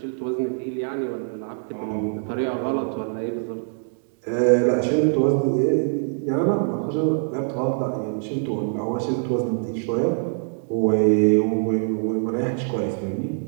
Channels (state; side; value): silent; left; 63 dB below the other